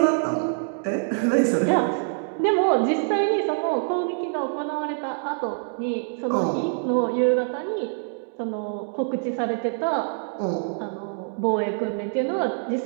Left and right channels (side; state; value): left; silent; digital silence